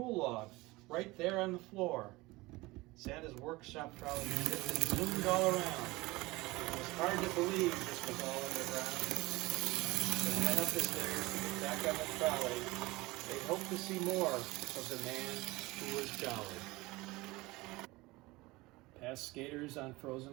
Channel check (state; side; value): quieter; left; 21.4 dB